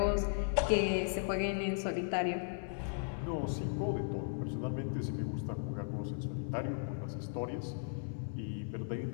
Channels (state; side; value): silent; right; 53 dB below the other